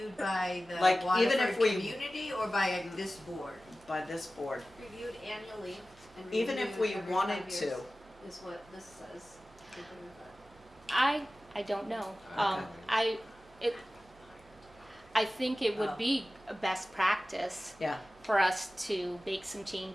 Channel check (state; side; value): normal; both; correlation 0.96